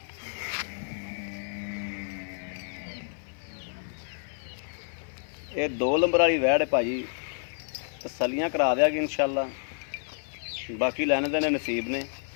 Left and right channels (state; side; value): silent; right; 56 dB below the other